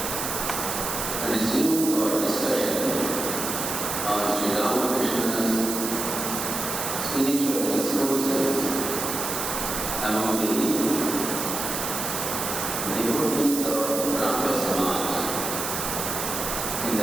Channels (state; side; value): noise; right; hiss, 3 dB below the sound